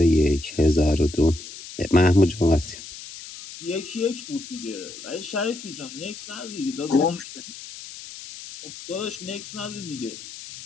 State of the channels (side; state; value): left; noise; hiss, 13 dB below the sound